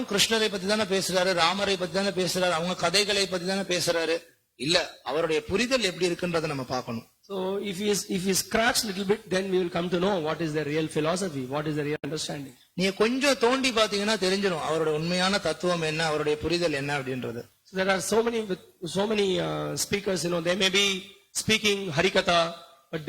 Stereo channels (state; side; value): identical; both; correlation 1.00